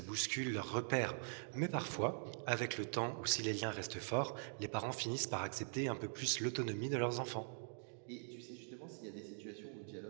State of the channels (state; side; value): silent; left; digital silence